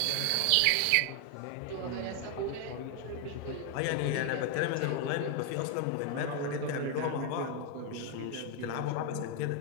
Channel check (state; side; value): different; both; correlation 0.00